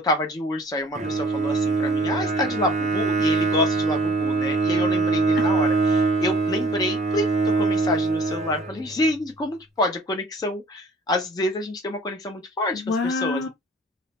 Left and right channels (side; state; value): both; normal; correlation 0.53